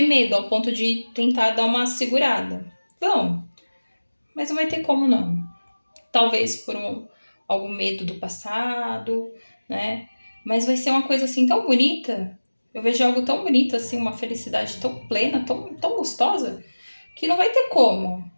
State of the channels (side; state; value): both; inverted; correlation -1.00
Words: medo ao ponto de tentar dar uma segurada. Vão, mas não vai ter como não. Talvez por algum medo do passado, né? Mas vai ser uma coisa assim tão bonita. Eu vejo algo tão bonito assim, uma felicidade tão plena, tão gostosa, que não vai ter como